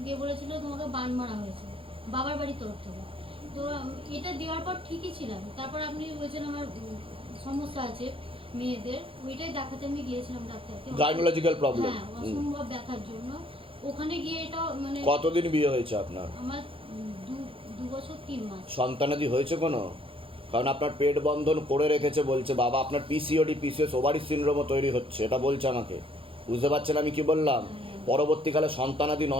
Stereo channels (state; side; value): late; left; 0.26 ms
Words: দিয়ে বলেছিল তোমাকে বান মারা হয়েছে বাবার বাড়ির তরফ থেকে। তো এটা দেওয়ার পর ঠিকই ছিলাম। তারপর আপনি বলছেন আমার সমস্যা আছে মেয়েদের, ওইটাই দেখাতে আমি গিয়েছিলাম ডাক্তারকে। Gynaecological problem. হ্যাঁ, অসম্ভব ব্যথার জন্য ওখানে গিয়ে এটা মানে। কতদিন বিয়ে হয়েছে আপনার? আমার 2 বছর 3 মাস। সন্তানাদি হয়েছে কোনো? কারণ আপনার পেট বন্ধন করে রেখেছে বলছে বাবা, আপনার পিসিওডি, পিসিএস, ওভারি সিনড্রোমও তৈরি হচ্ছে, এটা বলছে আমাকে। বুঝতে পারছেন আমি কি বললাম? পরবর্তীকালে সন্তানাদি